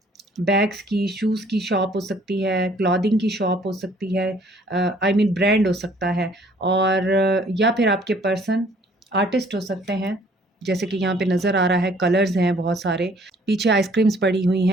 बैग्स की, शूज़ की शॉप हो सकती है, क्लॉथिंग की शॉप हो सकती है, आई मीन ब्रांड हो सकता है। और या फिर आपके पर्सन आर्टिस्ट हो सकते हैं, जैसे कि यहाँ पे नज़र आ रहा है, कलर्स हैं बहुत सारे, पीछे आइसक्रीम्स पड़ी हुई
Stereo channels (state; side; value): normal; both; correlation 0.59